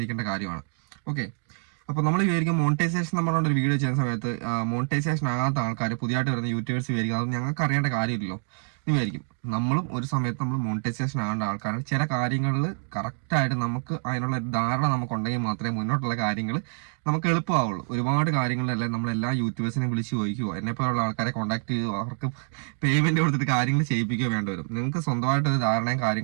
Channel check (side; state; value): left; silent; 61 dB below the other